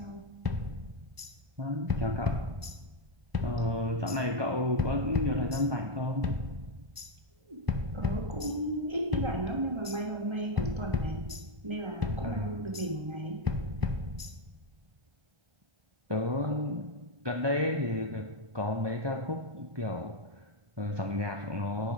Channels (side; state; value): left; late; 1.0 ms